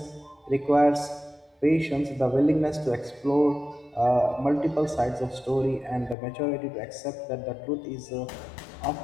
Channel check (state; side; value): drops out; right; at 6.2 s